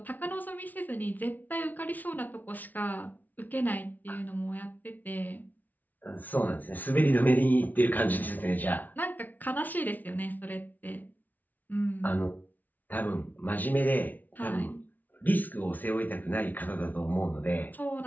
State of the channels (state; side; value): late; right; 0.080 ms